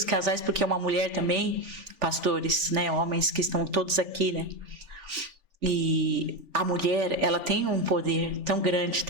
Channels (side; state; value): left; late; 3.4 ms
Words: casais, porque é uma mulher também, pastores, né, homens que estão todos aqui, né? E a mulher, ela tem um poder tão grande